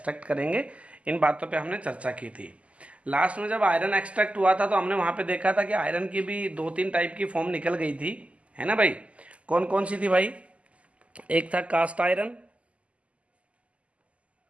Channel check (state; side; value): late; left; 0.063 ms